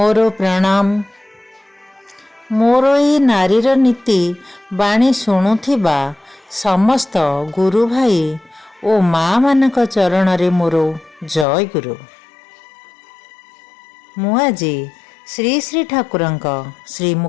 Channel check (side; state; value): right; drops out; at 11.5 s